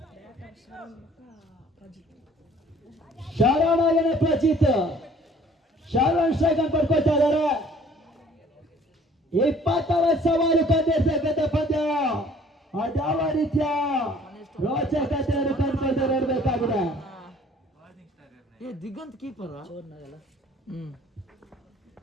ಶಾರಣಾಗನೆ ಪ್ರಚಿತ್ ಶಾರಣ್ ಸ್ಟ್ರೈಕನ್ ಪಡ್ಕೊಳ್ತಾ ಇದ್ದಾರೆ. 20ರ ಸವಾಲು ಕಂಡಿರ್ತಕ್ಕಂಥ ಪಂದ್ಯ ಅದಾವ ರೀತಿಯ ರೋಚಕತೆಯನ್ನು ಕಂಡುಕೊಂಡು ನೋಡಬೇಕಾಗಿದೆ. ದಿಗಂತ್ ಕೀಪರ್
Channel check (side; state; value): both; normal; correlation 0.54